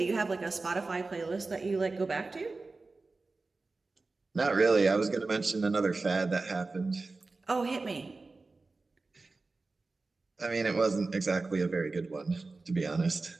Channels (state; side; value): quieter; left; 3.6 dB